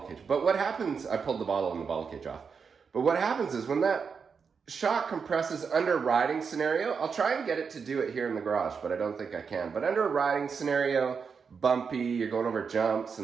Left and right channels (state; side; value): quieter; left; 5.8 dB